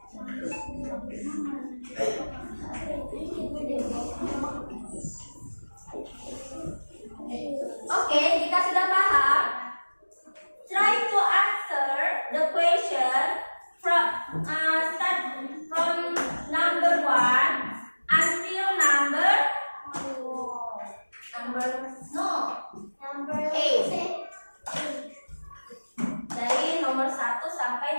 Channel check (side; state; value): both; inverted; correlation -1.00